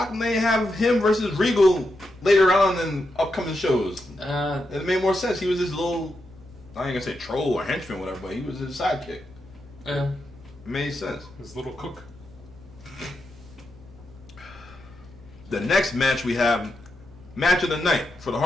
come they have him versus Regal later on in upcoming shows? It made more sense. He was this little, I ain't gonna say troll or henchman, whatever, but he was his sidekick. Yeah. It made sense. His little cook. The next match we have, match of the night for the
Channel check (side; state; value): left; noise; hum, 25 dB below the sound